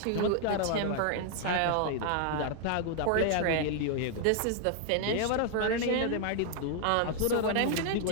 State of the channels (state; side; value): different; both; correlation 0.00